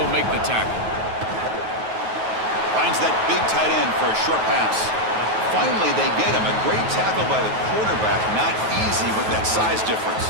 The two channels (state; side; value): late; left; 9.3 ms